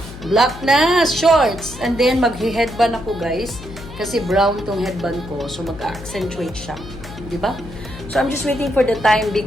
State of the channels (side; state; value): left; noise; hum, 14 dB below the sound